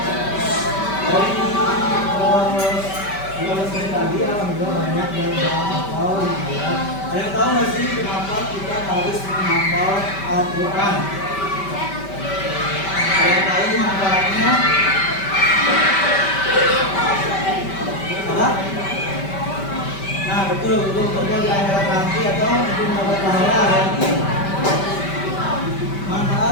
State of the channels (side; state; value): right; late; 5.2 ms